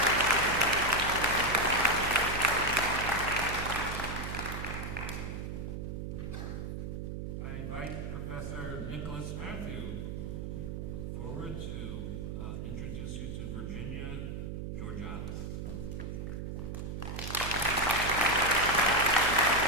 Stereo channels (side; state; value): right; noise; hum, 5 dB below the sound